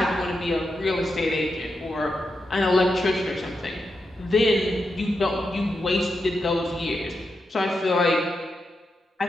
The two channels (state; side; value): normal; both; correlation 0.86